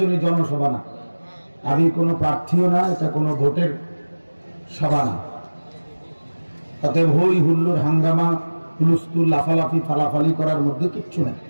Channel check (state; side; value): inverted; both; correlation -1.00